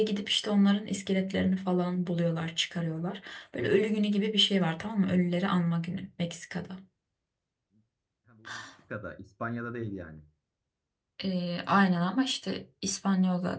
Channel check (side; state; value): both; identical; correlation 1.00